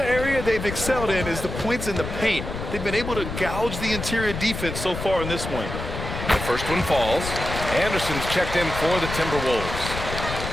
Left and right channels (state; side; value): noise; left; rumble, 6 dB below the sound